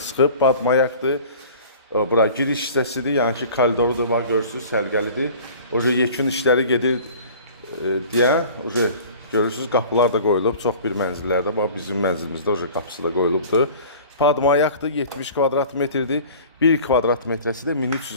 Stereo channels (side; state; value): both; inverted; correlation -0.44